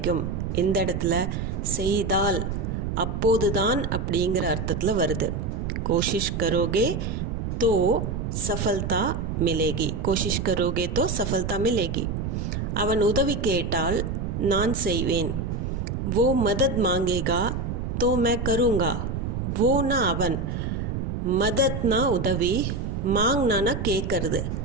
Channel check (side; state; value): right; noise; rumble, 3 dB below the sound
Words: இந்த இடத்துல செய்தால் அப்போதுதான் அப்படிங்கிற அர்த்தத்தில் வருது. கோஷிஷ் கரோகே தோ சஃபல்தா மிலேகி. கோஷிஷ் கரோகே தோ சஃபல்தா மிலேகி. அவன் உதவி கேட்டால் நான் செய்வேன். वो मदद मांगेगा तो मैं करूँगा. वो ना அவன், மதத்னா உதவி, மாங்னானா கேட்கறது.